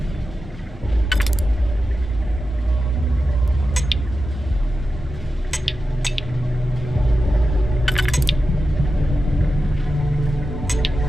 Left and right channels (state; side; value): normal; both; correlation 0.91